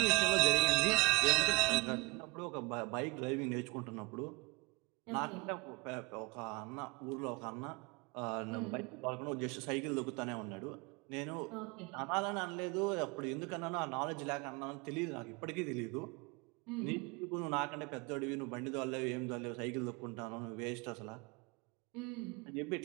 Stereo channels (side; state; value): left; quieter; 27.0 dB